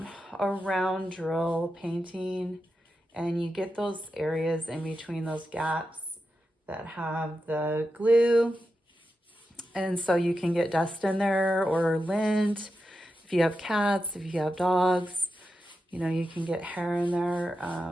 drill painting, and you get those areas in between those gaps that have the glue, and so you can get dust in there or lint. If you have cats, if you have dogs, you know, you can get hair in there.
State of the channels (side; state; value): both; normal; correlation 0.89